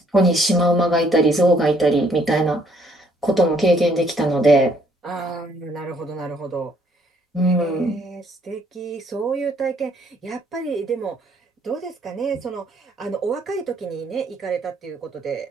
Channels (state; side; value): normal; both; correlation 0.66